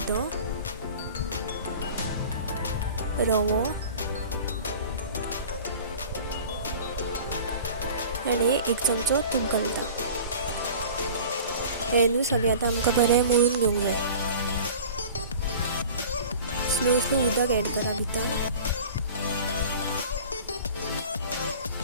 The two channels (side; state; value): both; inverted; correlation -0.41